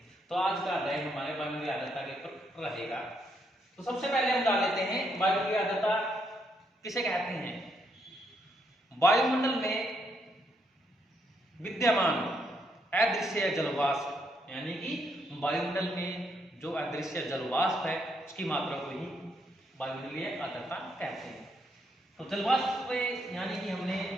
तो आज का अध्याय हमारे वायुमंडलीय आर्द्रता के ऊपर रहेगा। तो सबसे पहले हम जान लेते हैं वायुमंडलीय आर्द्रता किसे कहते हैं। वायुमंडल में विद्यमान अदृश्य जलवाष्प, यानी कि वायुमंडल में जो अदृश्य जलवाष्प है उसकी मात्रा को ही वायुमंडलीय आर्द्रता कहते हैं। तो जलवाष्प यानी कि हमने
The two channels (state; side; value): normal; both; correlation 0.76